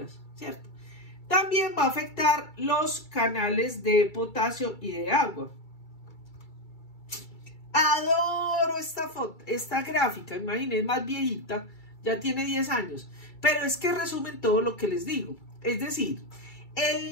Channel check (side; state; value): right; late; 2.3 ms